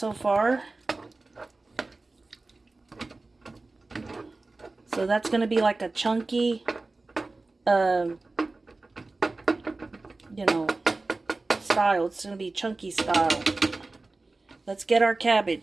far. So that's gonna be like a chunky, you know, style. It's gonna be chunky style. Let's get our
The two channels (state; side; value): quieter; left; 3.3 dB